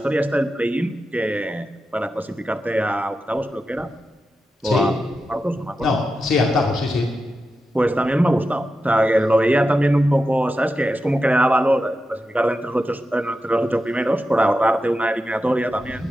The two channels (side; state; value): both; normal; correlation 0.90